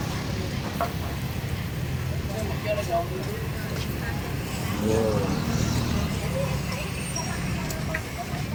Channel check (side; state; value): both; identical; correlation 1.00